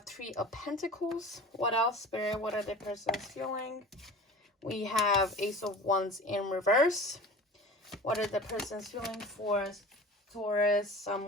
3 of Pentacles. What else, Spirit? What are the person's feeling? We have Ace of Wands in reverse. What are the person's feeling for Taurus, Sun,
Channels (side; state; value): both; normal; correlation 0.38